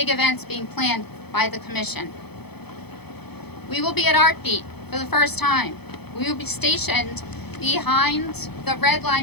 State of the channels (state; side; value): late; right; 0.98 ms